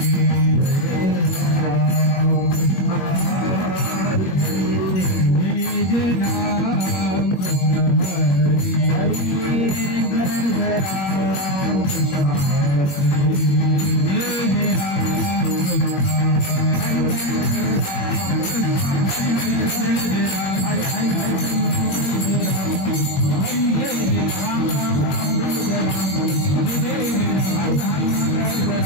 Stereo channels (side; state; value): right; late; 21 ms